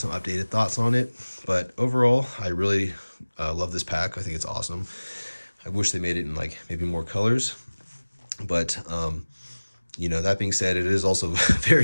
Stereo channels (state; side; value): inverted; both; correlation -1.00